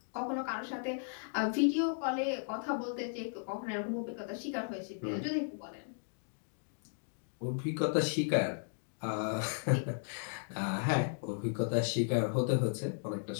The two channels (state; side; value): silent; right; digital silence